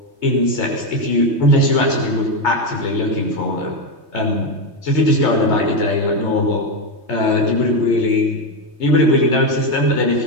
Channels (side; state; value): left; late; 3.2 ms